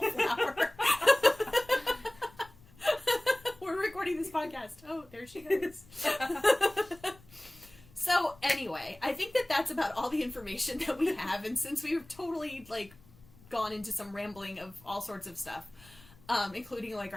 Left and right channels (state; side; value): noise; left; rumble, 25 dB below the sound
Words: We're recording this podcast. Oh, there she goes. So anyway, I think that that's about all the information that we have, and since we've totally like gone into some rambling of all sorts of stuff, including like